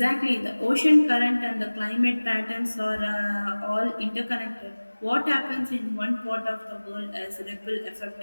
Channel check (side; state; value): both; inverted; correlation -1.00